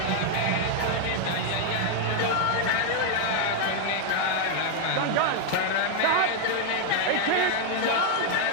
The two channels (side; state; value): both; different; correlation 0.00